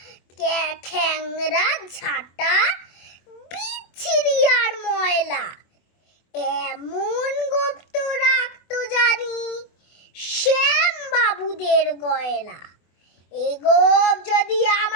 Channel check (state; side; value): late; right; 24 ms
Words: খ্যাংরা ঝাঁটা, বিচ্ছিরি আর ময়লা, এমন গোঁফ তো রাখতো জানি শ্যাম বাবুদের গয়লা। এ গোঁফ যদি